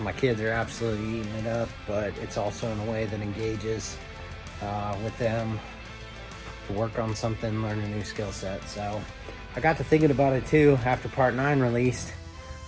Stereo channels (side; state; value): both; identical; correlation 1.00